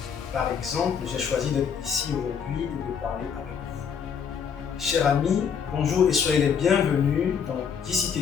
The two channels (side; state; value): right; quieter; 7.0 dB